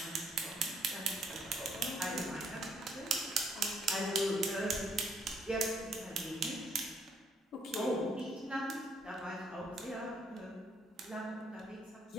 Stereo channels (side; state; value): both; normal; correlation 0.68